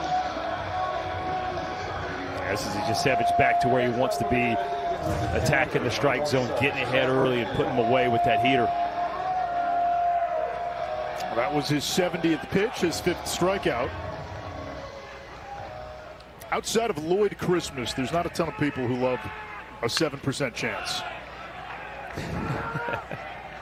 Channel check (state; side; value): identical; both; correlation 1.00